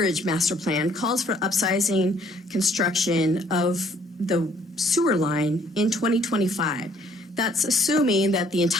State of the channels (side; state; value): both; normal; correlation 0.63